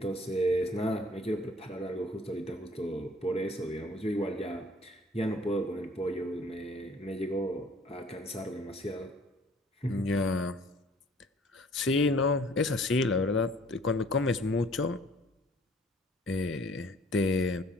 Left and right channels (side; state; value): both; normal; correlation 0.55